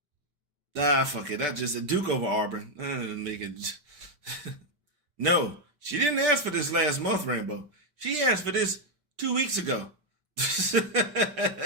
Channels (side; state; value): left; late; 5.1 ms